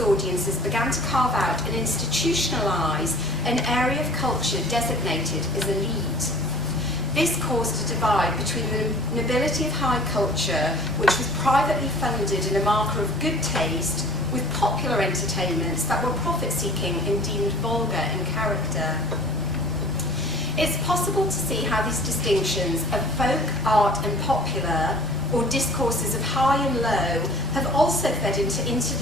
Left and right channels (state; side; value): normal; both; correlation 0.48